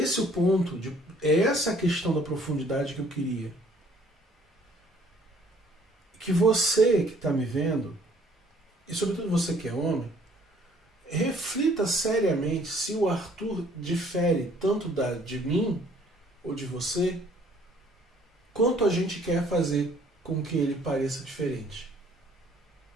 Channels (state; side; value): normal; both; correlation 0.59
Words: o ponto, é essa a questão da profundidade que eu queria. Que você que está me vendo, e sobretudo você que é homem, reflita seriamente se o Arthur difere tanto de mim ou de você, quanto a gente quer fazer com que ele pareça diferente.